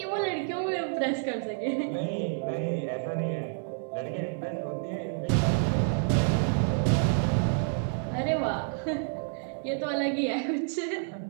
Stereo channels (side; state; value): left; silent; digital silence